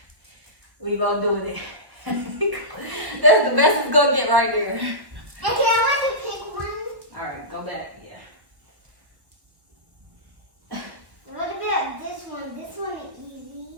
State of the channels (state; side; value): late; left; 1.1 ms